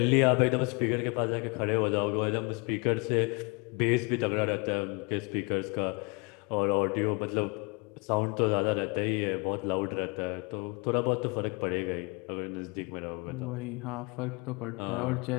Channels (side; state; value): right; quieter; 29.9 dB